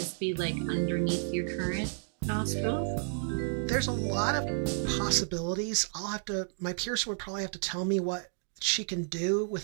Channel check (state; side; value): silent; left; digital silence